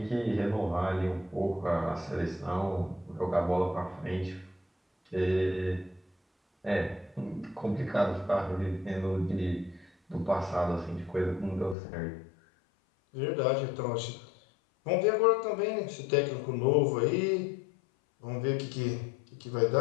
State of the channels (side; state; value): right; drops out; at 11.8 s